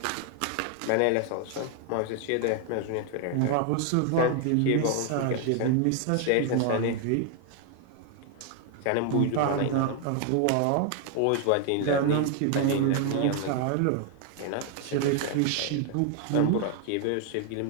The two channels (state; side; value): different; both; correlation 0.00